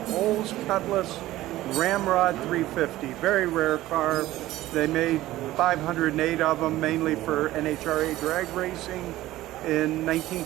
Olds Cutlass Ramrod 350. Very rare car. They made 508 of them, mainly for NHRA drag racing in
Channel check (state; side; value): quieter; left; 15.9 dB